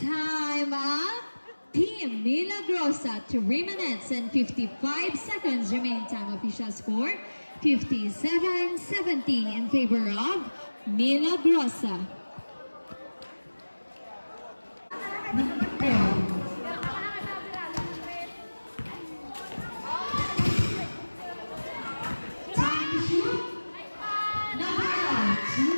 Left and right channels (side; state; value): both; inverted; correlation -1.00